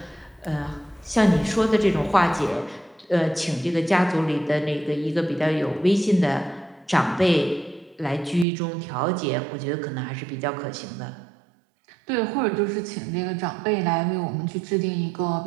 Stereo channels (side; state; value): left; drops out; at 8.5 s